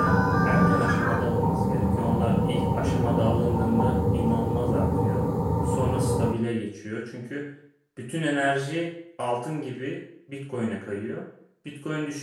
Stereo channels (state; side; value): identical; both; correlation 1.00